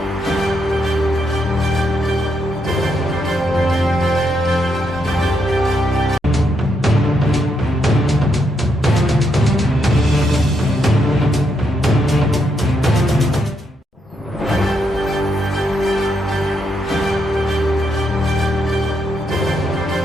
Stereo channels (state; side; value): normal; both; correlation 0.79